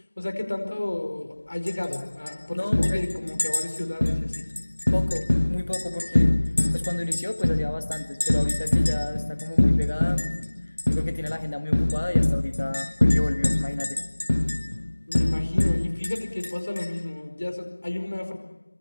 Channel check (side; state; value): both; inverted; correlation -1.00